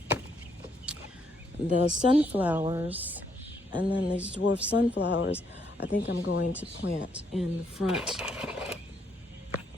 the sunflowers, and then these dwarf sunflowers, I think I'm going to plant in the front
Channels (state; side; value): normal; both; correlation 0.73